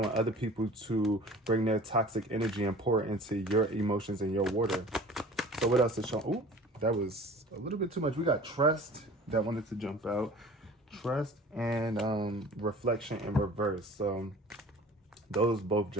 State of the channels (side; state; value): both; normal; correlation 0.44